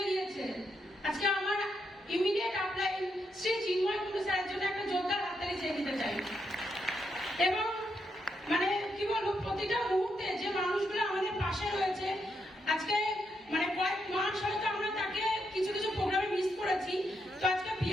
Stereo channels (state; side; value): normal; both; correlation 0.81